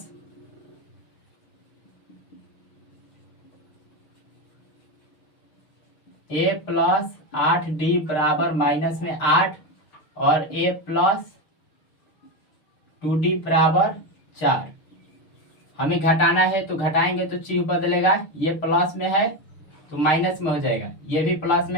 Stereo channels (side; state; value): right; late; 6.5 ms